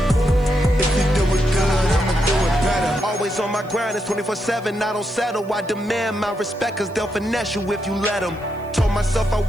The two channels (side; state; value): left; noise; hiss, 29 dB below the sound